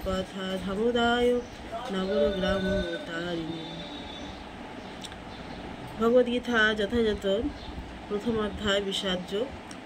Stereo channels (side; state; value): both; identical; correlation 1.00